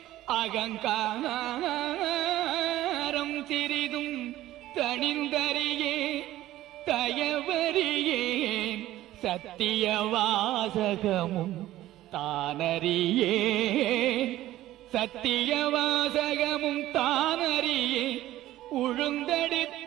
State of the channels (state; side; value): quieter; left; 14.8 dB